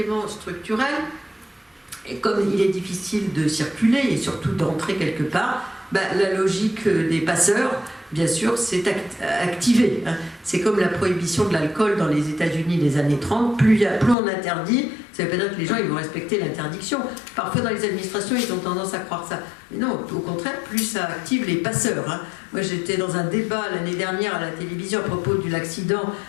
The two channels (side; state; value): right; drops out; at 14.2 s